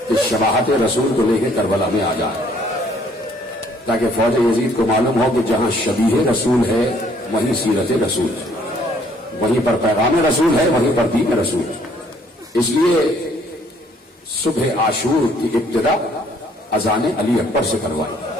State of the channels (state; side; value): normal; both; correlation 0.63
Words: کہ شباہت رسول کو لے کے کربلا میں آ جائے, تاکہ فوج یزید کو معلوم ہو کہ جہاں شبیہ رسول ہے وہیں سیرت رسول ہے, وہیں پر پیغام رسول ہے, وہیں پر دین رسول ہے. اس لیے صبح عاشور کی ابتدا اذان علی اکبر سے کروائی.